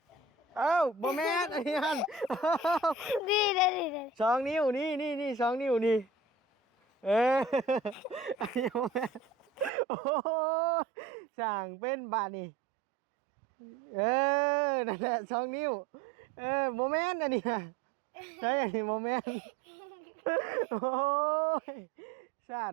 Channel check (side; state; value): left; drops out; at 9.7 s